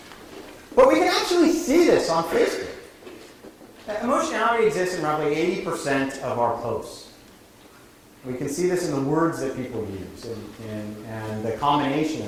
But we can actually see this on Facebook. Emotionality exists in roughly 80% of our posts. We can see this in the words that people use and the combination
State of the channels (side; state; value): both; identical; correlation 1.00